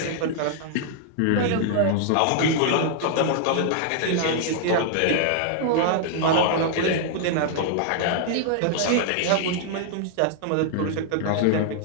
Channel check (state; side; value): different; both; correlation 0.00